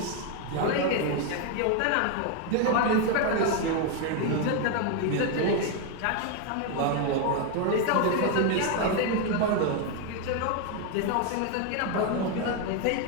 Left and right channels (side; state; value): both; different; correlation 0.01